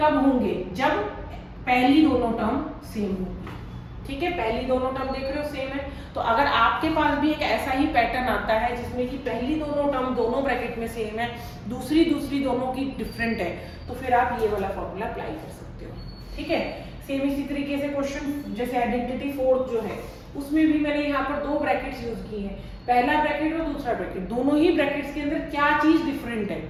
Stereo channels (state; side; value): identical; both; correlation 1.00